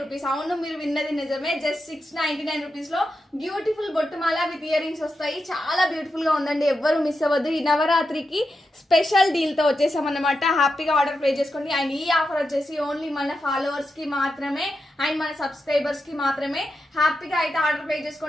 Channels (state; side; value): normal; both; correlation 0.88